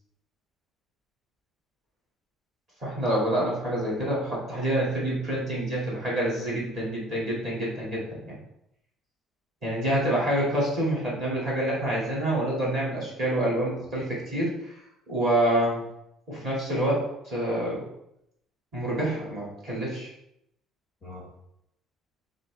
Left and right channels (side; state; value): both; normal; correlation 0.45